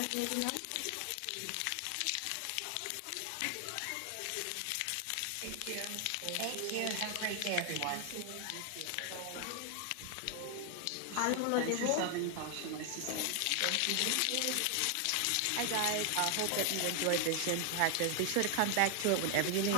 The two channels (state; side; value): different; both; correlation 0.00